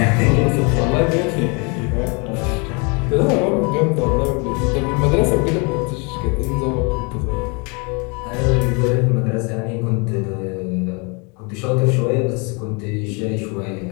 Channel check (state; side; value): quieter; right; 32.0 dB